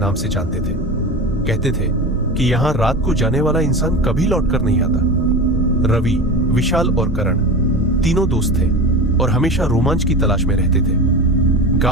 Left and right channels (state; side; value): normal; both; correlation 0.28